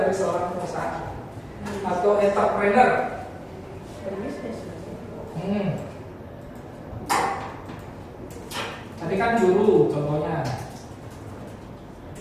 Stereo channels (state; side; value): identical; both; correlation 1.00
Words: dari seorang pengusaha atau entrepreneur. Tadi kan guru contohnya.